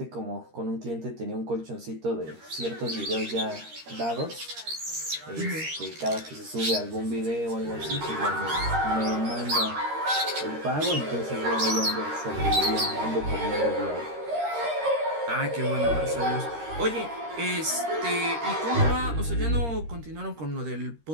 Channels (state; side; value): late; left; 13 ms